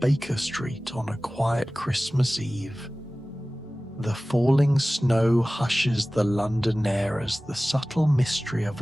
Street on a quiet Christmas Eve. The falling snow hushes the London air as the subtle mystery of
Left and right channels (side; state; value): both; normal; correlation 0.97